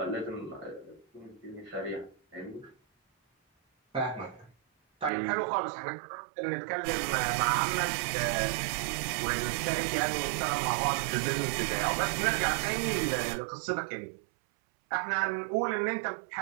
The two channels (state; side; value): drops out; left; at 5.1 s